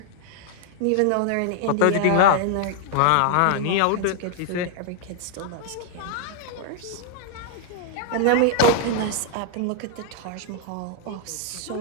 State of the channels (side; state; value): both; different; correlation 0.00